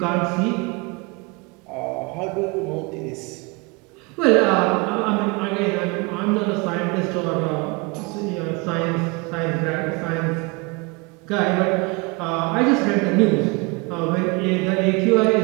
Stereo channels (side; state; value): left; quieter; 27.8 dB